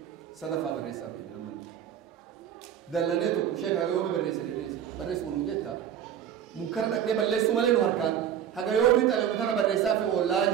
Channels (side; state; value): left; quieter; 9.5 dB